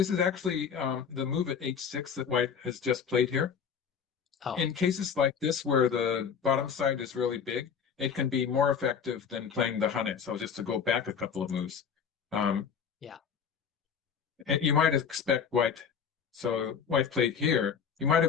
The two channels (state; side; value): quieter; right; 7.0 dB